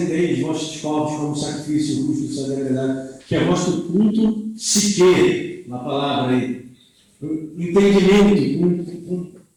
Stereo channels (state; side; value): identical; both; correlation 1.00